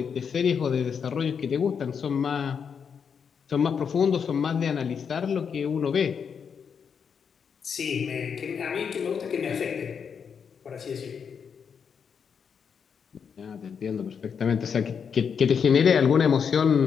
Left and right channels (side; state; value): right; quieter; 6.7 dB